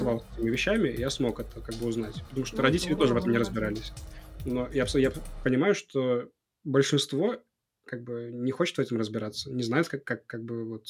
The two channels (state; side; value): identical; both; correlation 1.00